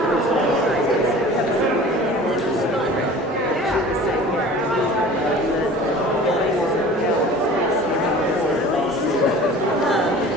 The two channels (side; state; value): both; normal; correlation 0.43